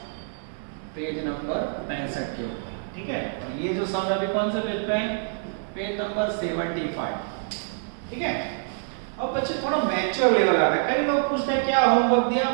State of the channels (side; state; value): left; silent; digital silence